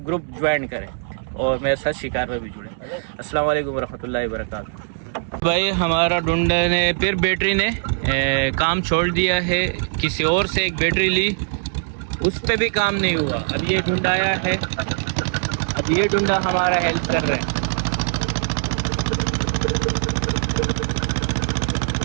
ग्रुप ज्वाइन करें और मेरे साथ शिकार में भी जुड़े। अस्सलाम वालेकुम रहमतुल्लाहि वबरकातुहू। भाई हमारा डुंडा ने फिर बैटरी ने काम छोड़ दिया है, किसी और से एक बैटरी ली, उस पर भी काम नहीं हुआ। अब ये डुंडा आया है, अब ये डुंडा हमारा हेल्प कर रहे हैं।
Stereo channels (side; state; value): left; silent; 65 dB below the other